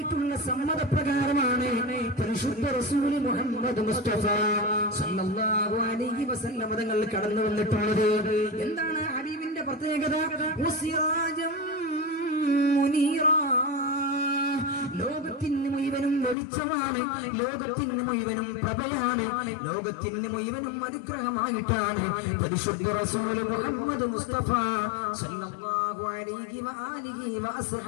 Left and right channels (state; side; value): drops out; right; at 16.4 s